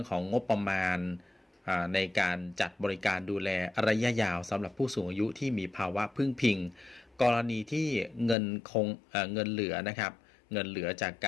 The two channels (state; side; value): drops out; right; at 8.3 s